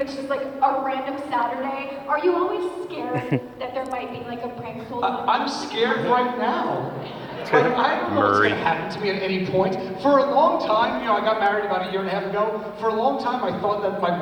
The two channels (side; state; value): both; identical; correlation 1.00